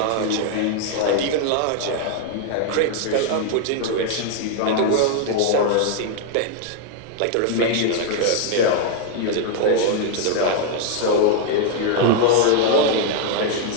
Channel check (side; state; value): both; different; correlation 0.00